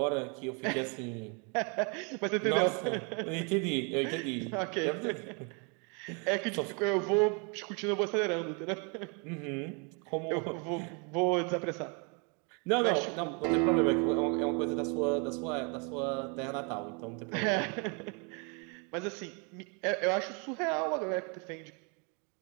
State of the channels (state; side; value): quieter; left; 34.8 dB